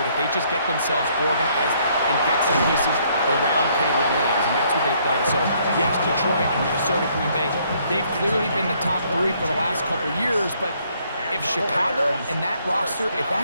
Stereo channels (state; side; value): inverted; both; correlation -0.67